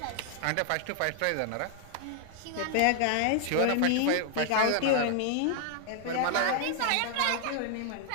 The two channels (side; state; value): both; different; correlation 0.00